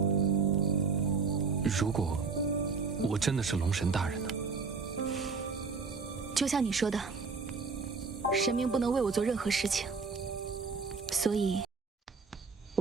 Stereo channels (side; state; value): left; quieter; 4.8 dB